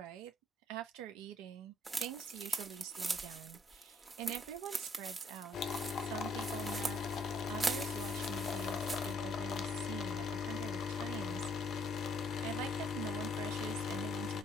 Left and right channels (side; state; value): both; normal; correlation 0.66